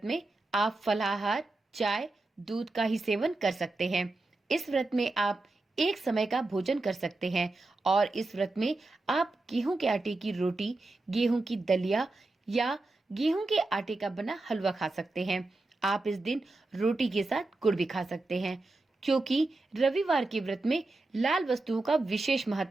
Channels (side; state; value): left; quieter; 3.1 dB